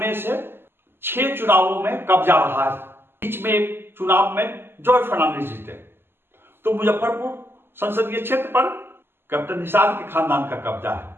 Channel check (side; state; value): left; late; 0.11 ms